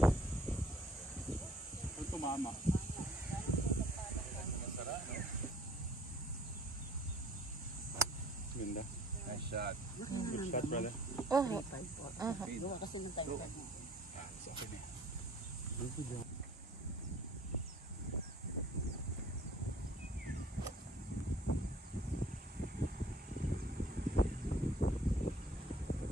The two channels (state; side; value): normal; both; correlation 0.54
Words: Ang tumama. Ganda. Nice shot. Good shot, brother. Oh. Aha. Sa akin eh.